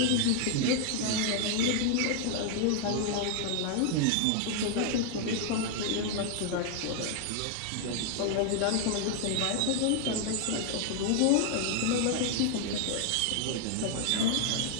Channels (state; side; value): different; both; correlation 0.00